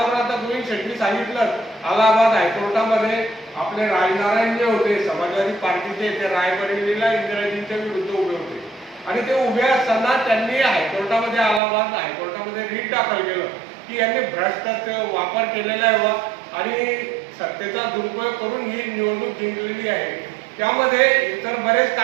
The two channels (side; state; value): left; drops out; at 11.6 s